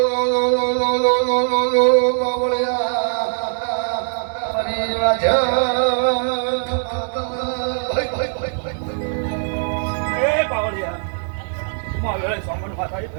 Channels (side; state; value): left; silent; digital silence